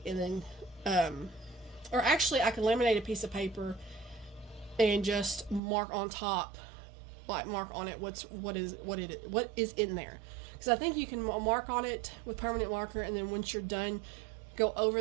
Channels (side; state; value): left; drops out; at 5.6 s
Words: and then or actually I can laminate a piece of paper and just mark on top, like mark on it what is in there, because I think you can mark on it with permanent marker, and then once you're done, go